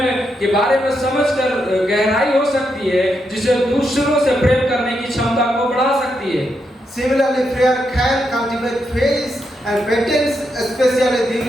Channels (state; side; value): normal; both; correlation 0.82